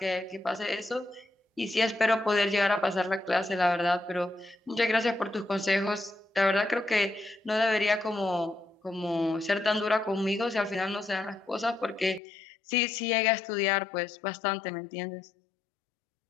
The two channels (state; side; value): drops out; right; at 12.2 s